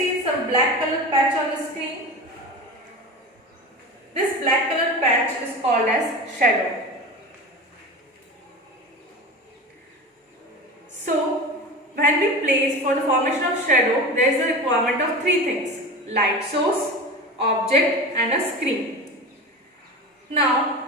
some black colored patch on the screen? This black colored patch is called as shadow. So, when we place for the formation of shadow, there is a requirement of three things: light source, object and a screen.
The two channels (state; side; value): normal; both; correlation 0.30